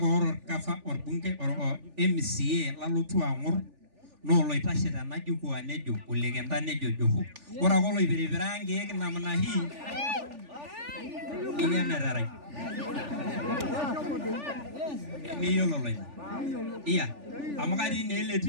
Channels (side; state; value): left; late; 3.4 ms